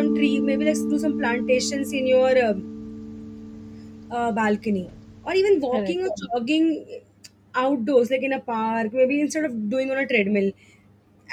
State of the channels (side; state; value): both; identical; correlation 1.00